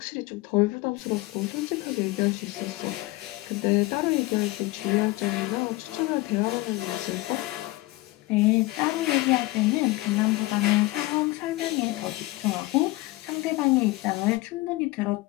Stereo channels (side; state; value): right; quieter; 20.1 dB